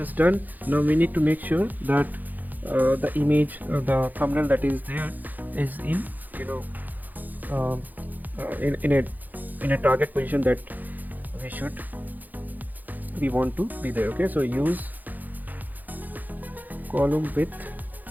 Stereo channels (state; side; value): late; left; 0.084 ms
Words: done. Now we need to make sure that the image, the thumbnail that is there is in, you know, um, in a target position that we want to be there. Okay, so use column width